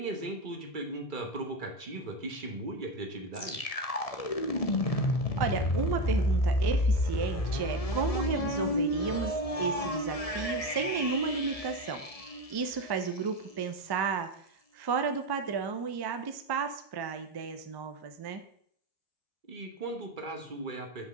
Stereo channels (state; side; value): late; right; 1.7 ms